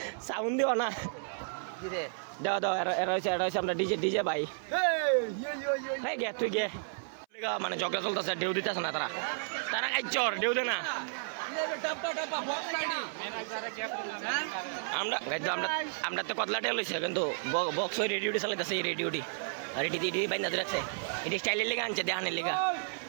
সাউন্ড দিও না দাও দাও এরা হচ্ছে আমরা ডিজে ভাই হ্যাঁ গে তুই গে মানে ঝগড়া চলতেছে ঢেউ দিতেছে না তারা চর ঢেউ দে না আমরা আমরা তো কতলা টেল হয়েছে কিন্তু বক্স ওই রেডিওটি চালাইতেছে এই রেডিওটি আর এটি বাইন্দা রাখছে এটি স্টাইলের লেগে আনছে দেহানের লেগা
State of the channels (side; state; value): left; silent; 56 dB below the other